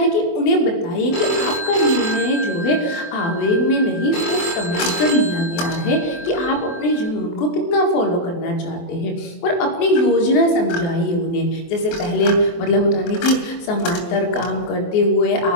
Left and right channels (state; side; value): late; right; 23 ms